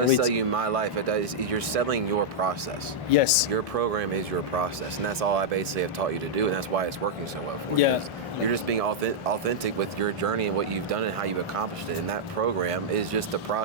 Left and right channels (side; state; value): both; normal; correlation -0.06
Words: it. sell you my life. That is, you're selling your process. Yes. Your program is your process, and that's all I basically have taught you to do, and that's why it's working so well for you. Yeah. 'Cause you're just being authentic with your journey and what you've done and how you've accomplished it. And that program is just the